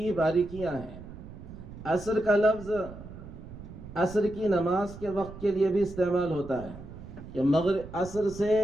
باریکیاں ہیں۔ عصر کا لفظ عصر کی نماز کے وقت کے لیے بھی استعمال ہوتا ہے کہ مغرب عصر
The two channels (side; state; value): right; noise; rumble, 14 dB below the sound